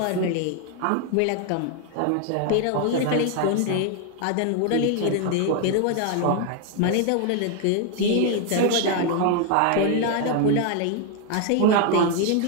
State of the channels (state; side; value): different; both; correlation 0.01